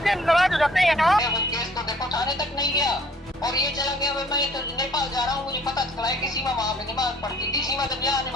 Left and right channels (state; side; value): normal; both; correlation 0.57